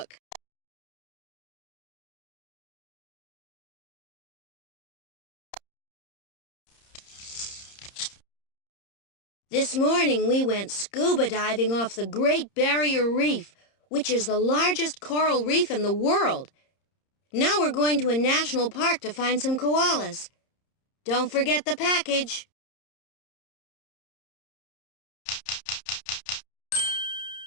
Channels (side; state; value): right; late; 30 ms